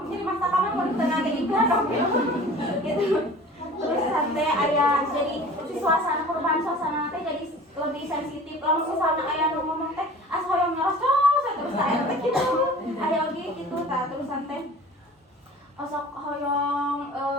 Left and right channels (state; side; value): normal; both; correlation 0.43